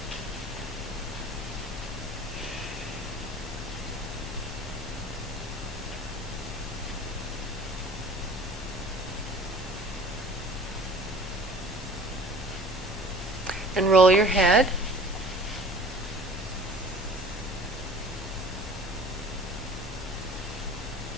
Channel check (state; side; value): normal; both; correlation 0.46